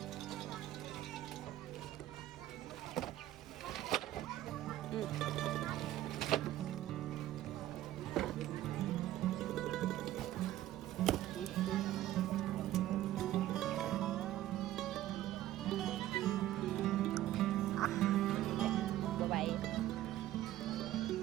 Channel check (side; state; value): left; quieter; 13.9 dB